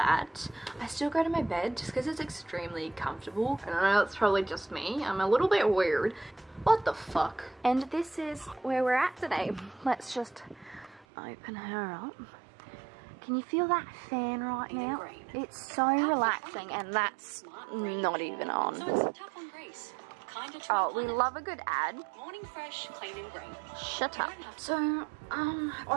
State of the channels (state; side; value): drops out; left; at 11.1 s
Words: I still go to my bed just because it's extremely comfortable. And I know it's probably just me, I'm a little bit weird. What the fuck? And this is where we're at today. Let's just open her up. Can you feel that fan right now? It's so relaxing, and that's not even on. Oh, we love a good ad. Morning fresh, clean and green. Shut up. So,